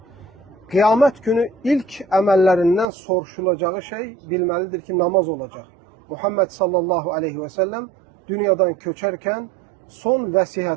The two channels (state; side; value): drops out; left; at 2.9 s